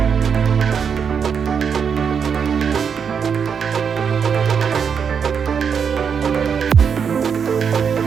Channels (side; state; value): left; quieter; 6.8 dB